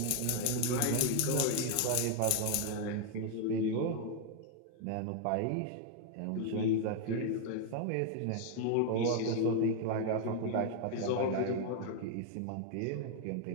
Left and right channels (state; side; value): different; both; correlation 0.00